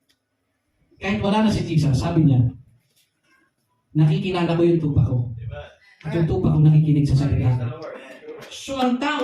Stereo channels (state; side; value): identical; both; correlation 1.00